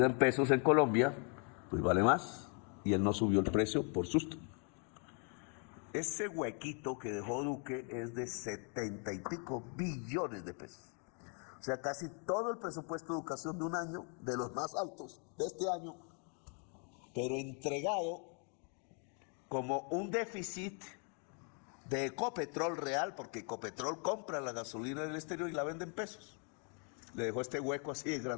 en pesos en Colombia, pues vale más, y él no subió el precio por susto. Ese huequito que dejó Duque es de 70 y pico billones de pesos. O sea, casi todo el presupuesto de educación de un año, de los más altos de este año, pero entregado como un déficit de Ecopetrol real, porque Ecopetrol compra la gasolina del exterior y la vende en pesos. Le dejó este hueco así de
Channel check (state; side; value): quieter; right; 39.3 dB